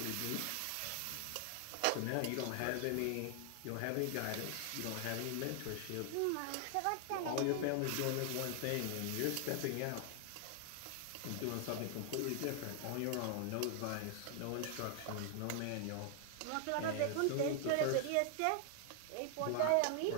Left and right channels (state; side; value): different; both; correlation 0.00